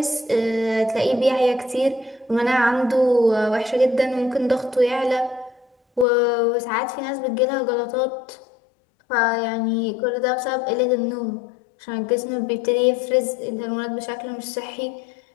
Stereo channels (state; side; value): drops out; right; at 6.1 s